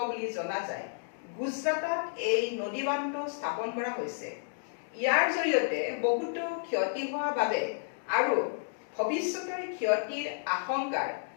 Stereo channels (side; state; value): right; silent; digital silence